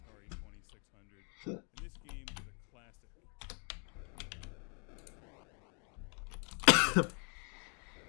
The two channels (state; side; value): quieter; right; 37.6 dB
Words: 2600. And this game is a classic.